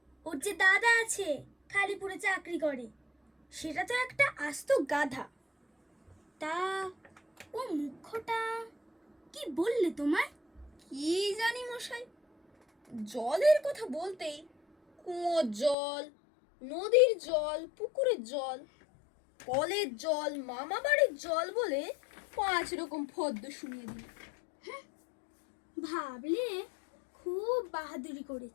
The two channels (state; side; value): drops out; right; at 15.8 s